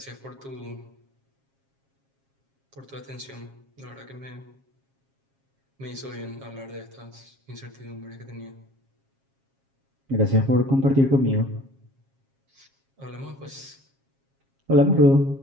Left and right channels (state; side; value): late; left; 7.4 ms